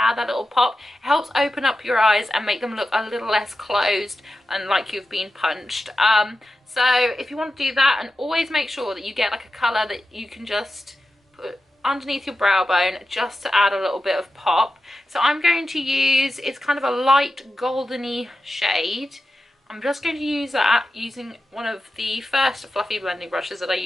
that little pop, it helps open up your eyes and make them look a little less closed and like you've been punched. So if you want to do that, and always make sure that you get like a colour that you can just put underneath your brow bone just to add a little bit of pop. So I'm going to use, it's kind of a light goldeny shade. I'm just going to use that using one of the first fluffy blending brushes that I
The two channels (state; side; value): normal; both; correlation 0.92